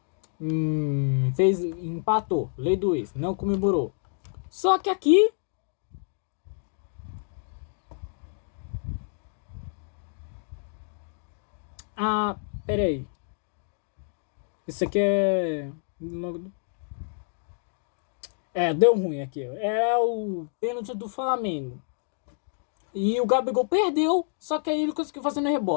empatou, lei do ex, não comemorou. Só que aqui pera aí. Isso aqui deu ruim aqui. Era o pênalti do Flamengo. E o Gabigol perdeu, só que aí ele conseguiu fazer no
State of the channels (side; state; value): right; silent; digital silence